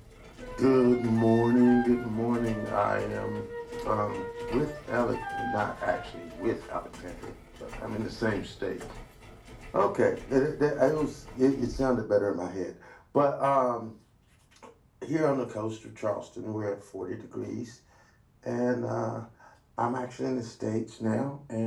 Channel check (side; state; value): both; identical; correlation 1.00